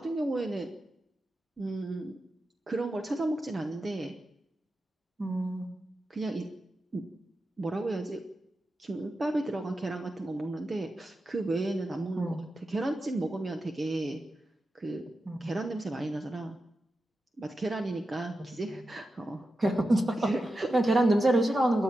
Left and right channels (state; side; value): normal; both; correlation 0.91